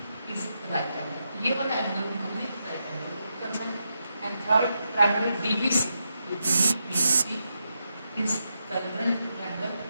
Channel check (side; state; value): both; inverted; correlation -0.85